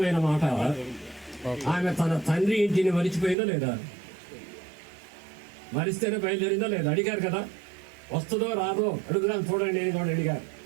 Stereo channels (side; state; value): left; drops out; at 3.4 s